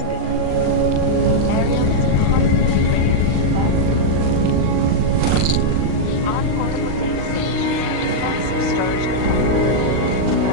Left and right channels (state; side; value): late; left; 38 ms